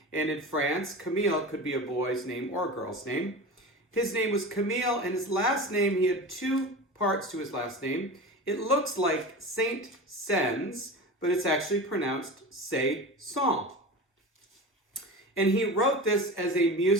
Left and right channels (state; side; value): normal; both; correlation 0.30